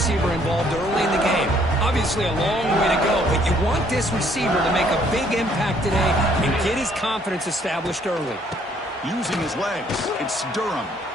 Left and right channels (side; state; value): both; normal; correlation 0.64